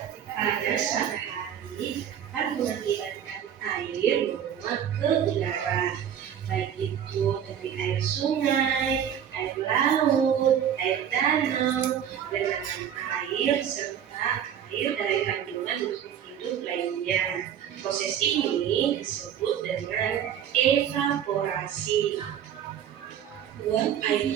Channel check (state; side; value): quieter; left; 9.2 dB